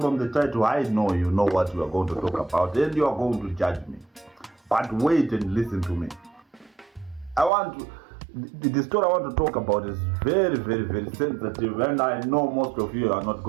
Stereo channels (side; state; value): left; drops out; at 7.5 s